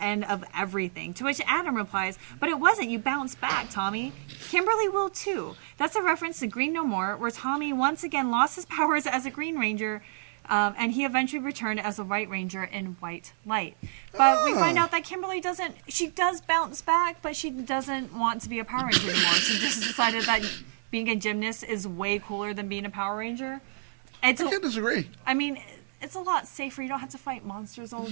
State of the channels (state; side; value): silent; left; 59 dB below the other